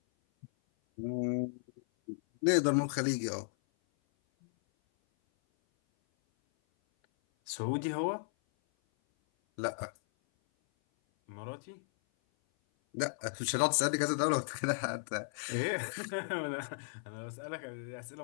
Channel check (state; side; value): silent; right; 54 dB below the other